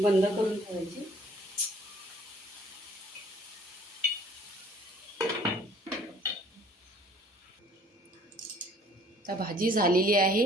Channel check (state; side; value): normal; both; correlation 0.56